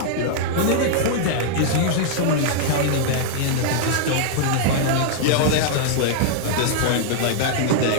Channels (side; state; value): both; different; correlation -0.01